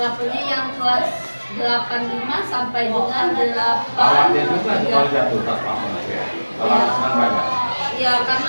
yang kelas 85 sampai dengan 8. Khawatir juga kalau jatuh tak apa ya. Kalau Iya. senang banyak. Ya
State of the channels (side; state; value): both; inverted; correlation -1.00